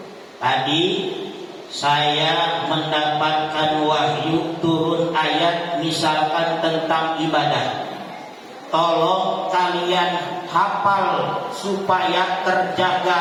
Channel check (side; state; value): both; identical; correlation 1.00